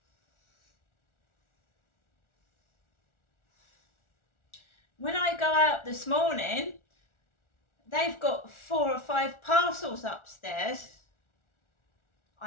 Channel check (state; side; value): late; right; 1.4 ms